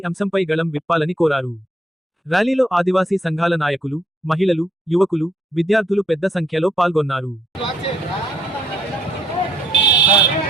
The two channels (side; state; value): both; normal; correlation 0.72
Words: అంశంపై గళం విప్పాలని కోరారు. ర్యాలీలో ఆదివాసీ సంఘాల నాయకులు, మహిళలు, యువకులు, విద్యార్థులు పెద్ద సంఖ్యలో పాల్గొన్నారు.